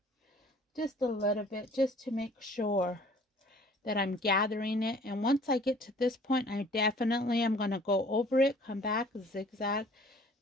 Just a little bit, just to make sure that I'm gathering it. And once I get to this point, I definitely am going to go over it, come back, zigzag,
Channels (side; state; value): both; normal; correlation 0.53